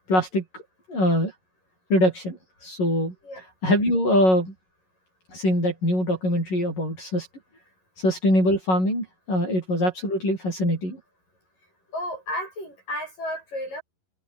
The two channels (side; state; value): right; late; 11 ms